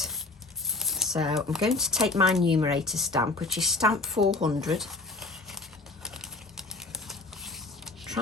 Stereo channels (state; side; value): quieter; right; 3.4 dB